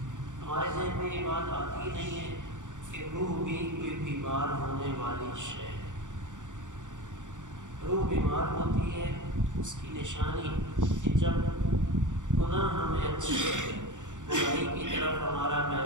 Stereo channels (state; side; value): late; left; 0.86 ms